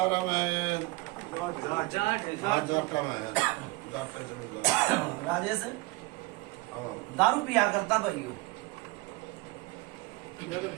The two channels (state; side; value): quieter; left; 22.1 dB